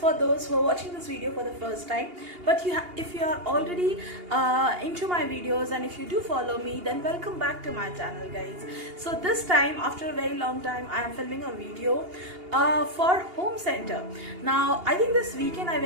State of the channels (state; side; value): late; left; 2.8 ms